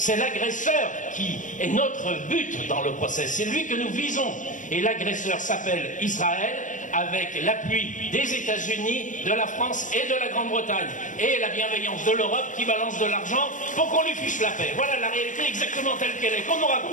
l'agresseur qui est notre but dans le procès, c'est lui que nous visons. Et l'agresseur s'appelle Israël, avec l'appui des États-Unis, de la France et de la Grande-Bretagne. Et la bienveillance de l'Europe qui balance de l'argent pour qu'on lui fiche la paix. Voilà la réalité exactement telle qu'elle est, qu'on ne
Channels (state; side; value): late; right; 0.37 ms